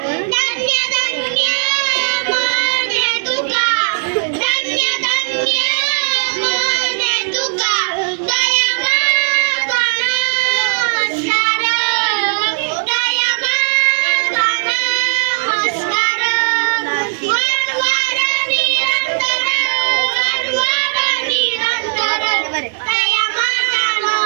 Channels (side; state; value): left; silent; 59 dB below the other